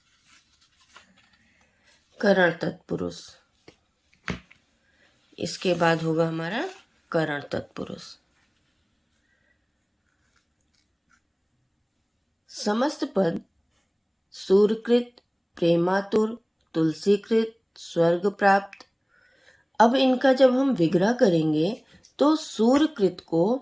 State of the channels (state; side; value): identical; both; correlation 1.00